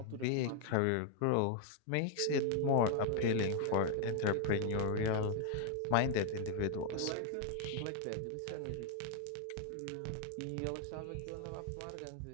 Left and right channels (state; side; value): different; both; correlation 0.00